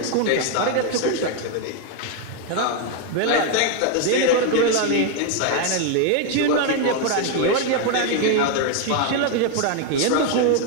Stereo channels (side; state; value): both; different; correlation 0.01